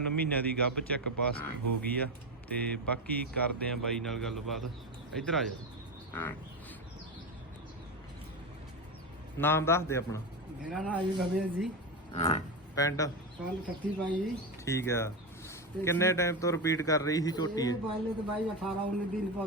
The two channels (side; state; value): both; normal; correlation 0.15